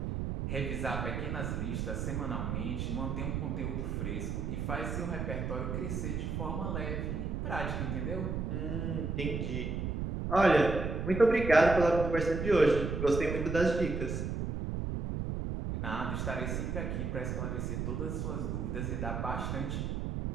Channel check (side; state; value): right; noise; rumble, 2 dB below the sound